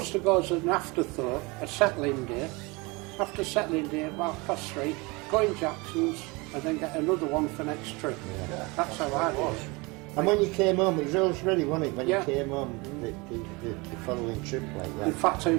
to go as an afterthought, a settling day. After settling day, about 3:30, go in Jackson's and then get another one for next trip. Yeah. That's how I was. And when you came home, it was always ready, wasn't it? When you came home, the following trip like that. In fact, I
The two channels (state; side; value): quieter; left; 26.1 dB